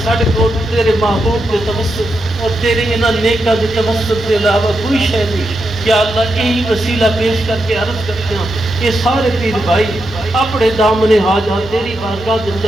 ساڑھے کو تیرے محبوب کے توسط اور تیرے انہاں نیکہ کے توسط کے علاوہ کوئی شے نہیں یا اللہ یہی وسیلہ پیش کر کے عرض کرتے ہیں یہ سارے پیر بھائی اپنے دامن حاجات تیری بارگاہ کے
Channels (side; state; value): both; normal; correlation 0.85